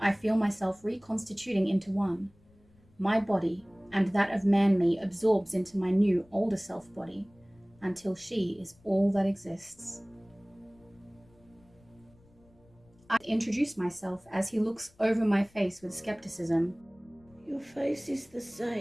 I feel myself reconstituting into one. My body and that of Man-Me absorbs into my new older self body, until she is all that exists. I introduce myself as he looks over my face with skepticism. Your face is the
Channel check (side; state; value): left; noise; rumble, 30 dB below the sound